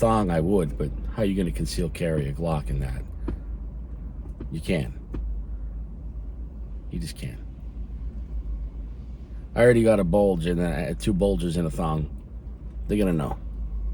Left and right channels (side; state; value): both; identical; correlation 1.00